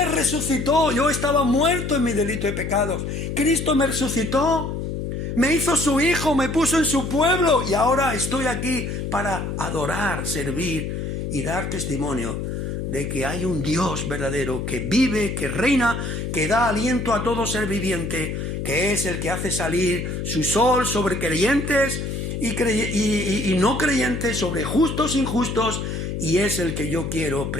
resucitó. Yo estaba muerto en mi delito de pecados. Cristo me resucitó. Me hizo su hijo, me puso en su pueblo y ahora estoy aquí para adorar, servir y dar testimonio de que hay un Dios verdadero que vive, que reina, que da aliento a todo ser viviente, que es el que hace salir su sol sobre creyentes y no creyentes, sobre justos e injustos, y es el que yo quiero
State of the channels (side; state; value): left; noise; hum, 4 dB below the sound